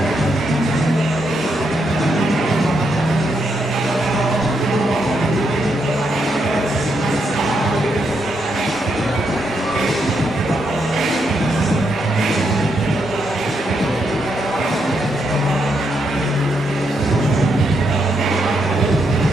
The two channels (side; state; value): both; normal; correlation 0.79